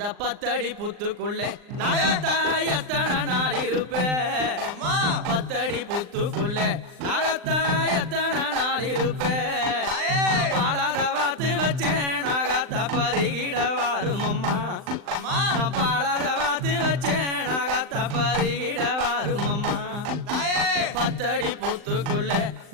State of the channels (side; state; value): left; late; 39 ms